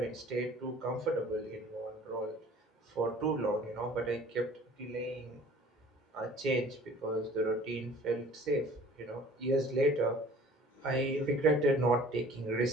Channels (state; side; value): normal; both; correlation 0.50